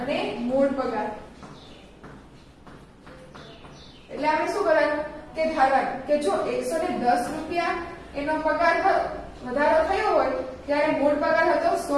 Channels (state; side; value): identical; both; correlation 1.00